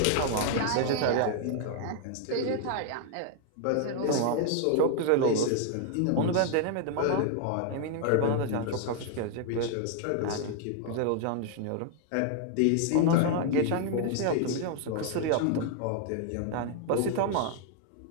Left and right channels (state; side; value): different; both; correlation 0.00